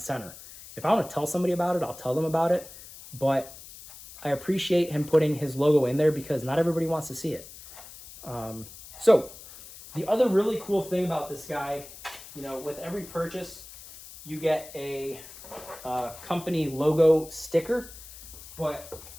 If I want to tell somebody about it, I'll tell them about it. But I appreciate him putting his logo in there because not everybody wants to see it. So the other really cool thing about this guy, you know, with every purchase, you get a company logo sticker. But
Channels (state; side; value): noise; left; hiss, 16 dB below the sound